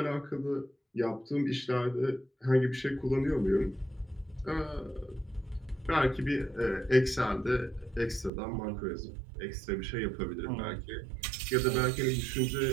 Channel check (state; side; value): drops out; left; at 8.3 s